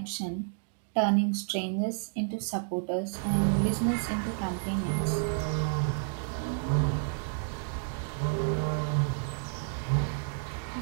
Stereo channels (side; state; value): left; silent; 57 dB below the other